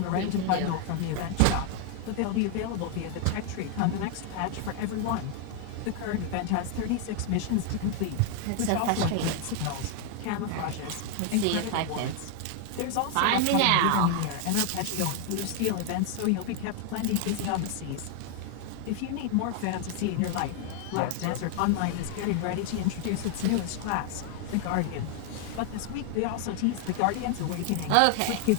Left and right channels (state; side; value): different; both; correlation 0.01